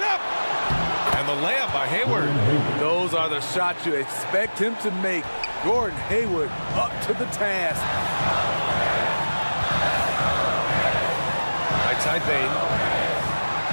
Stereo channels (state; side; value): inverted; both; correlation -1.00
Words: up. And the layup by Hayward. Those are the shots you expect him to make. Gordon Hayward up to the task. Right side Bain.